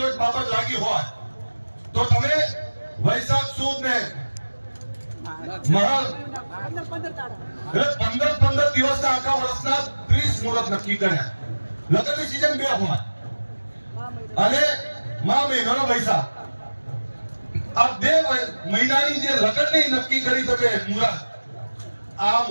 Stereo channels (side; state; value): both; inverted; correlation -1.00